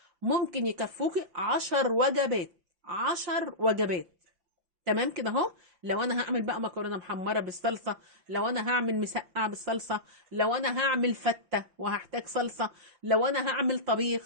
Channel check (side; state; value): left; late; 5.9 ms